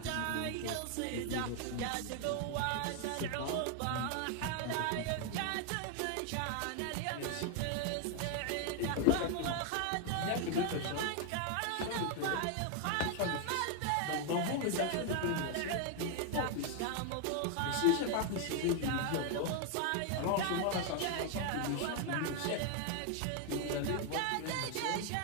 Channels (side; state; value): both; different; correlation 0.01